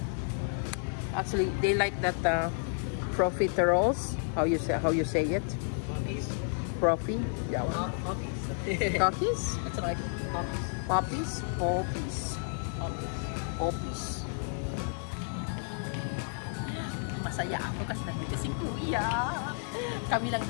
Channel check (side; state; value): right; silent; 57 dB below the other